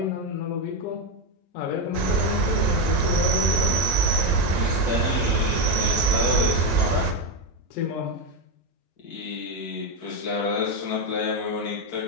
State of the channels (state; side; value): normal; both; correlation 0.08